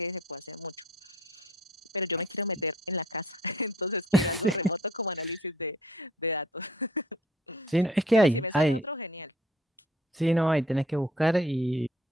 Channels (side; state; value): both; normal; correlation 0.56